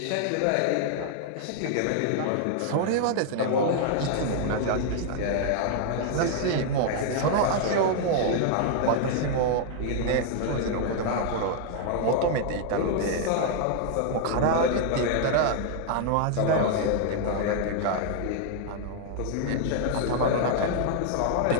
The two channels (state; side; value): different; both; correlation -0.01